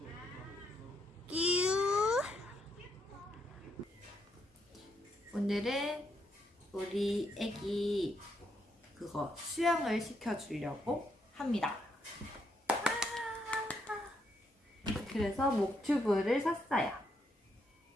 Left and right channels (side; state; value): both; normal; correlation 0.76